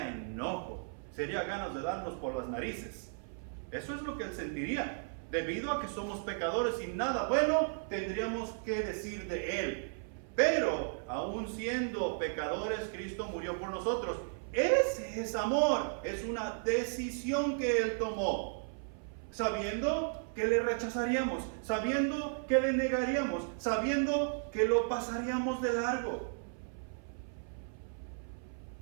enojo, sería ganas de darnos por las narices. Eso es lo que Él sentiría. Debido a que somos pecadores y nada bueno tendríamos que decir de Él. Pero aún siendo pecadores, Cristo murió por nosotros. Ese es amor. Es una decisión que Él tomó, sabiendo que le rechazaríamos, sabiendo que le negaríamos, sabiendo que lo pasaríamos de largo.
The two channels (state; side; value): silent; left; 55 dB below the other